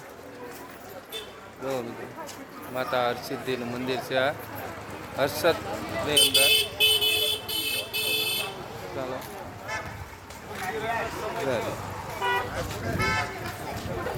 જો મિત્રો, માતા હરસિદ્ધિનું મંદિર છે. આ હર્ષદની અંદર. ચાલો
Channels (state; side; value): identical; both; correlation 1.00